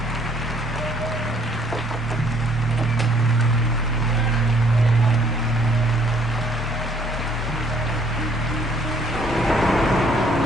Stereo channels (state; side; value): normal; both; correlation 0.62